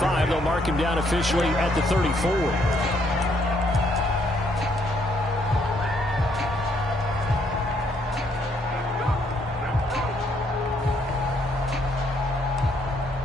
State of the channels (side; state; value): both; normal; correlation 0.70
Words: They'll mark him down officially at the 34.